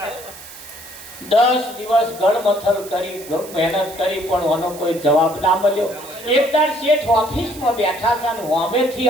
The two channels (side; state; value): right; noise; hiss, 16 dB below the sound